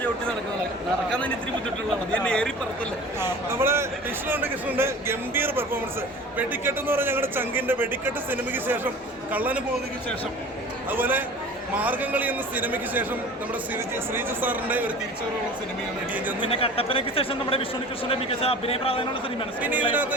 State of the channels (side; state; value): both; normal; correlation 0.40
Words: നമ്മുടെ കൃഷ്ണന്റെ ഗംഭീര പെർഫോമൻസ്. വെടിക്കെട്ട് എന്ന് പറഞ്ഞാൽ ഞങ്ങളുടെ ചങ്കിന്റെ വെടിക്കെട്ട് സിനിമയ്ക്ക് ശേഷം, കള്ളന് പോകുന്നതിന് ശേഷം, അതുപോലെ മാർഗംകളി എന്ന സിനിമയ്ക്ക് ശേഷം നമ്മുടെ ശ്രീജു സാറിന്റെ ഒരു തിരിച്ചുവരവുള്ള സിനിമയാണ് ഇടിയൻ ചന്ത്. പിന്നെ കട്ടപ്പനയ്ക്ക് ശേഷം നമ്മുടെ വിഷ്ണു കൃഷ്ണന്റെ മികച്ച അഭിനയ പ്രാധാന്യമുള്ള സിനിമയാണ്. പിന്നെ ഇതിനകത്ത്